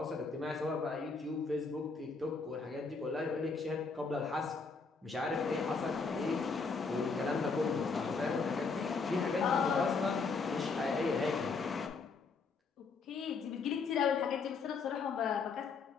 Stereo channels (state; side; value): quieter; right; 4.6 dB